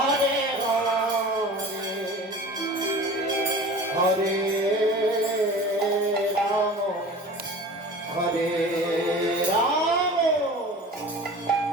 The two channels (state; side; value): normal; both; correlation 0.39